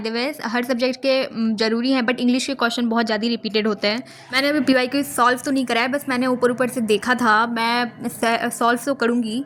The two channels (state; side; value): identical; both; correlation 1.00